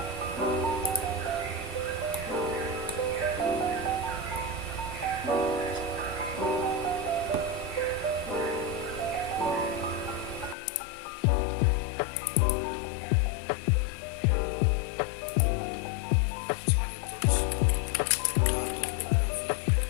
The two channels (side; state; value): right; drops out; at 10.6 s